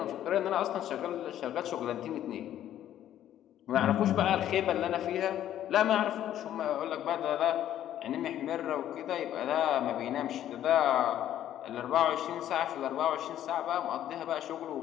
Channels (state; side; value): quieter; right; 11.6 dB